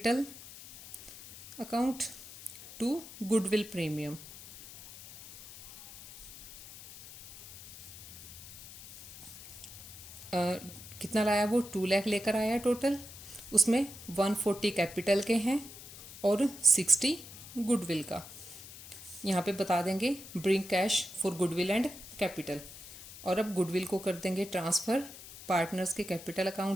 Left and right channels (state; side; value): noise; left; hiss, 15 dB below the sound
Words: account to goodwill premium. कितना लाया वो, 2 लाख लेकर आया टोटल, उसमें 140 कैपिटल के हैं और 60 गुडविल का। यहाँ पे बता देंगे bring cash for goodwill and capital. और अब गुडविल को कर देंगे ट्रांसफ़र पार्टनर्स के कैपिटल